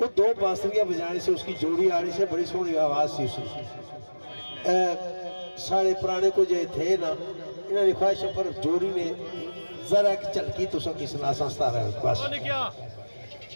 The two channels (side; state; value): both; inverted; correlation -1.00